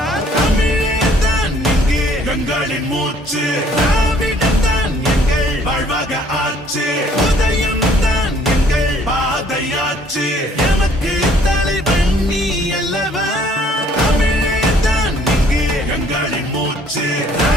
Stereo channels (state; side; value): normal; both; correlation 0.60